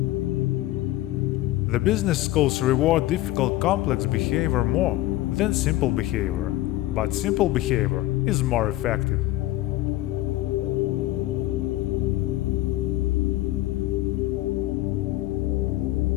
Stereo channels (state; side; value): quieter; right; 16.5 dB